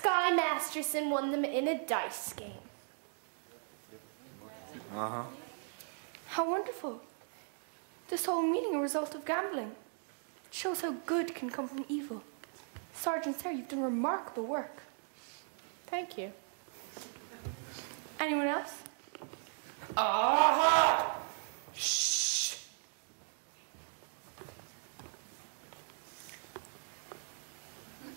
Masterson won them in a dice game. Uh-huh. How wonderful. This whole meeting a result of gambling. It shows how good can come from evil. Sergeant Sarah, you've done remarkable work. Thank you. Anyone else? Aha! Shh.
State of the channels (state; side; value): silent; left; 53 dB below the other